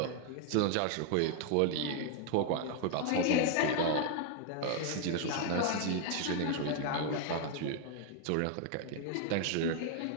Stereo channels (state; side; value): different; both; correlation 0.00